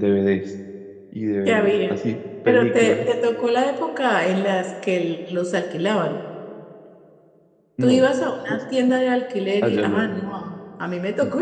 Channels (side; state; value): both; identical; correlation 1.00